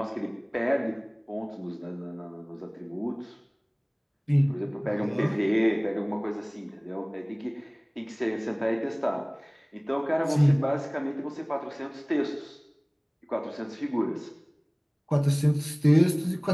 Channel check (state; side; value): identical; both; correlation 1.00